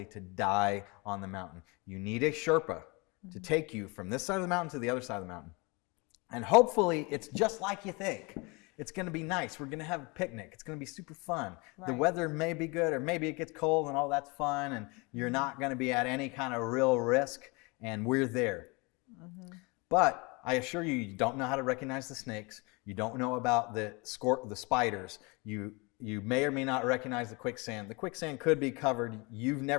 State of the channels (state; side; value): quieter; right; 27.9 dB